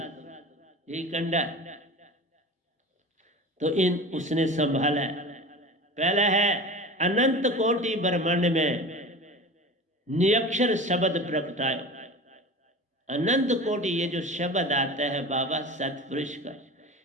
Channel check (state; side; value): normal; both; correlation 0.34